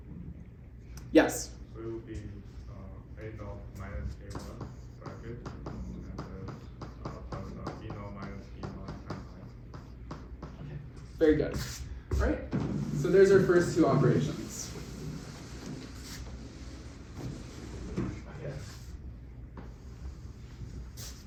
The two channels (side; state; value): both; identical; correlation 1.00